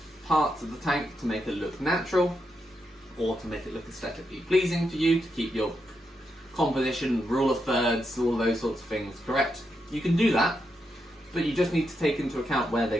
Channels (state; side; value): normal; both; correlation 0.83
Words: parts of the tank to make it look natural, or to make it look aesthetically pleasing for you, to keep your composition, rule of thirds, all those sorts of things correct. You can do that, but you just need to take into account where